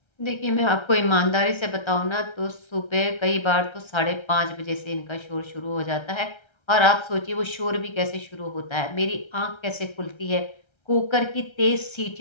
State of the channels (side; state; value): right; late; 1.3 ms